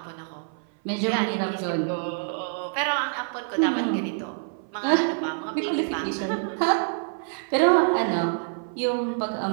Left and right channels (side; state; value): left; silent; 56 dB below the other